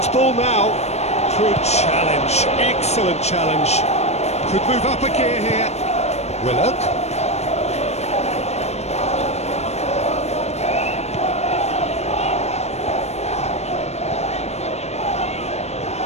ball now. Good challenge, excellent challenge. Could move up a gear here. Willock.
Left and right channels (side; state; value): right; late; 0.31 ms